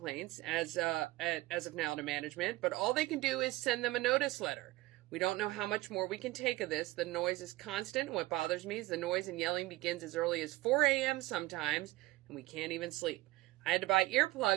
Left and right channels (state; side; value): quieter; left; 19.1 dB